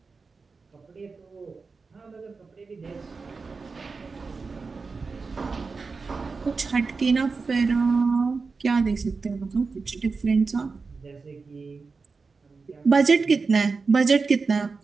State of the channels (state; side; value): quieter; left; 4.5 dB